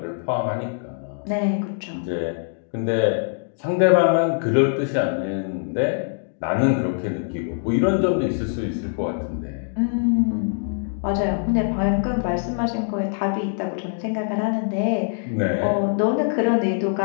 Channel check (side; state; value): right; silent; digital silence